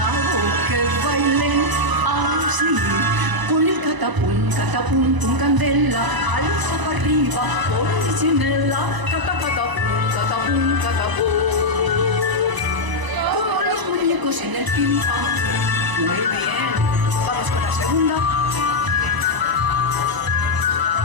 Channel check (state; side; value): late; left; 1.0 ms